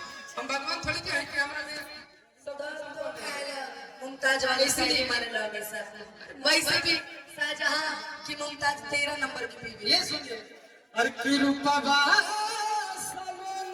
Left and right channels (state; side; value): identical; both; correlation 1.00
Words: हम भगवान थोड़ी के हैं कि हमारा में मुमताज वाले इसलिए मारे लगे सर, वैसे भी शाहजहां की मुमताज 13 नंबर की बीवी। ये सुनिए, अरे की रूपा बा